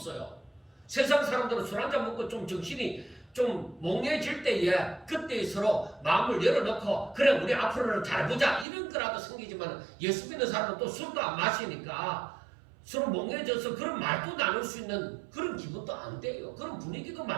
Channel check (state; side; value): drops out; left; at 8.7 s